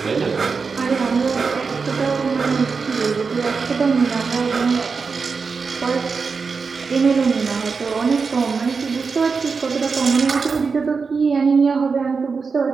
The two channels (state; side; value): quieter; left; 5.0 dB